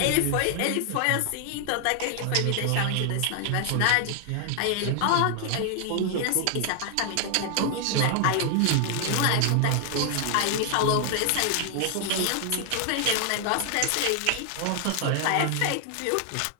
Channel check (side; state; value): both; different; correlation 0.00